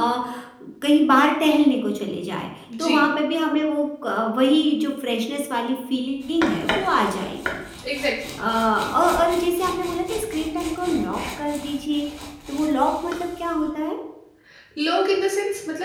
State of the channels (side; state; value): both; identical; correlation 1.00